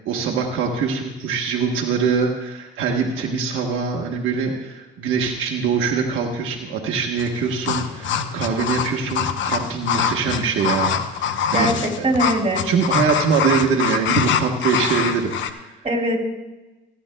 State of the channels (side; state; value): both; normal; correlation 0.24